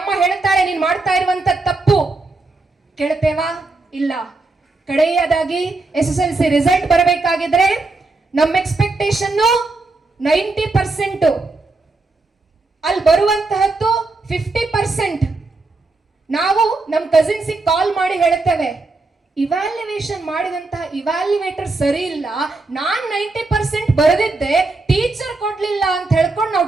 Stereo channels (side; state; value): left; quieter; 3.4 dB